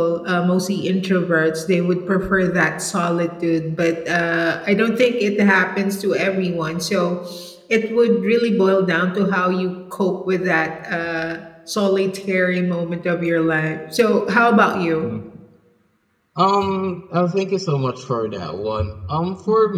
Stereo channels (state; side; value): identical; both; correlation 1.00